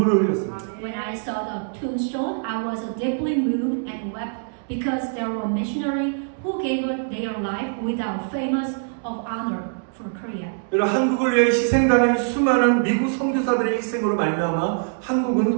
흘렸습니다. When I saw the tombstone, I was deeply moved and wept because there were missionaries who gave their life without famous of honor for Korea. 여러분 한국을 위해 희생당한 수많은 미국 선교사들의 희생으로 말미암아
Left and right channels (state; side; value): silent; left; digital silence